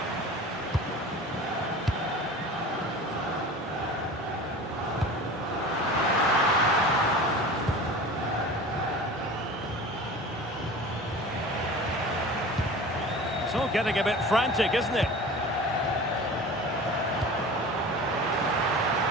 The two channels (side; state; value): both; normal; correlation 0.37